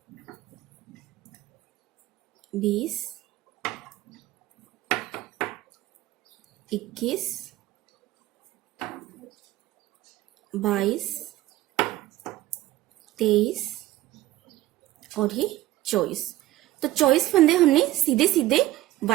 20, 21, 22, 23 और ये 24। तो 24 फंदे हमने सीधे सीधे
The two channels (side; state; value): left; quieter; 15.9 dB